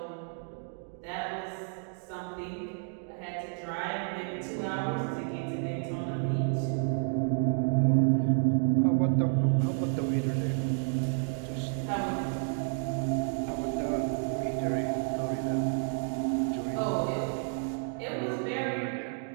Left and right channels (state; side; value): silent; left; 57 dB below the other